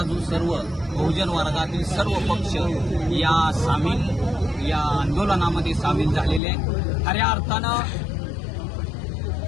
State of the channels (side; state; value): right; drops out; at 6.4 s